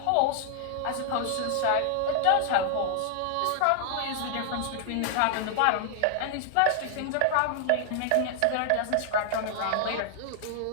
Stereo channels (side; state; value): both; different; correlation 0.00